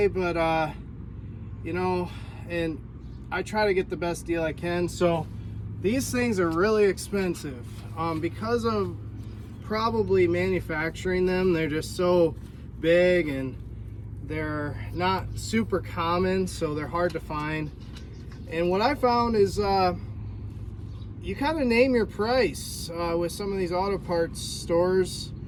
but you know, and I try to get the best deal I can. So these things are really expensive because of probably manufacturing them. They're just so big and they're not super common, so they're hard to find. And what I found is you kind of name your price with some of these auto parts stores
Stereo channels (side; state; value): both; identical; correlation 1.00